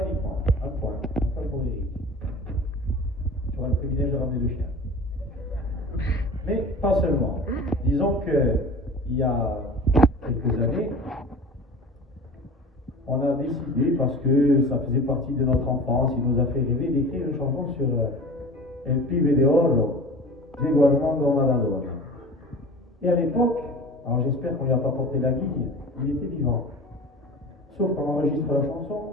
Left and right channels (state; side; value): normal; both; correlation 0.38